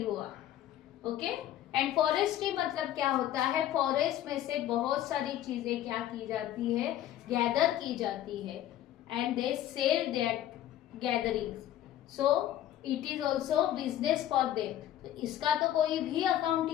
हुआ. Okay. And forestry मतलब क्या होता है, फॉरेस्ट में से बहुत सारी चीजें क्या की जाती है, गैदर की जाती है, and they sell that gatherings. So it is also business for them. तो इसका तो कोई भी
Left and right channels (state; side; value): quieter; right; 12.3 dB